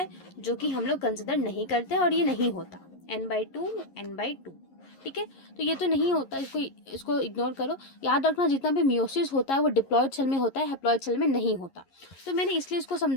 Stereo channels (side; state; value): right; late; 11 ms